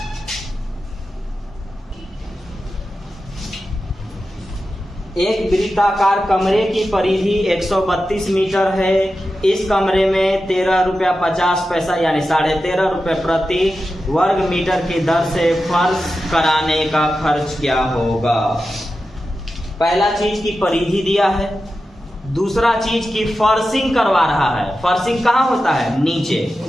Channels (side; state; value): both; normal; correlation 0.92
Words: एक वृत्ताकार कमरे की परिधि 132 मीटर है। इस कमरे में 13 रुपया 50 पैसा यानी 13.5 रुपये प्रति वर्ग मीटर की दर से फर्श कराने का खर्च क्या होगा? पहला चीज की परिधि दिया है, दूसरा चीज की फर्शिंग करवा रहा है। फर्शिंग कहाँ होता है? नीचे।